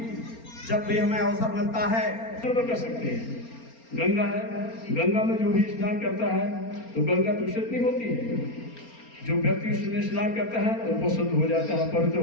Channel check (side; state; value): right; late; 4.3 ms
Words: जब भी हमें अवसर मिलता है तो कर सकते हैं। गंगा है, गंगा में जो भी स्नान करता है तो गंगा दूषित नहीं होती है। जो व्यक्ति उसमें स्नान करता है तो वो शुद्ध हो जाता है, पवित्र